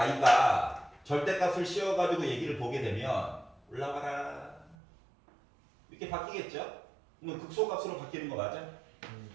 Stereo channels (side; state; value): left; drops out; at 4.8 s